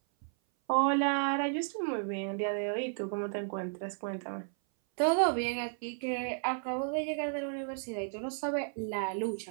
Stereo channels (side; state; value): left; silent; 56 dB below the other